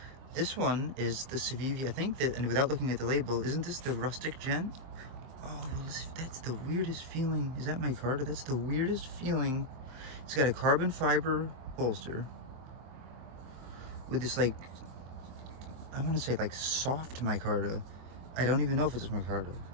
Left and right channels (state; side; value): late; left; 23 ms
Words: This one is the Civivi. I think that, and without looking at the label, isn't this the Rustic Gent? Oh, that's the weirdest feeling. Is that micarta? That's the weirdest feeling. It's got a carbon fiber bolster with this, like, I want to say like soft micarta. I don't even know if it's micarta.